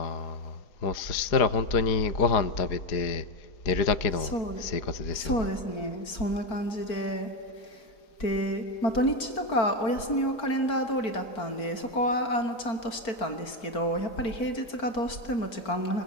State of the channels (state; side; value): late; right; 4.5 ms